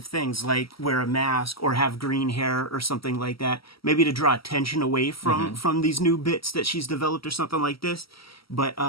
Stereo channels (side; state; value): right; late; 0.75 ms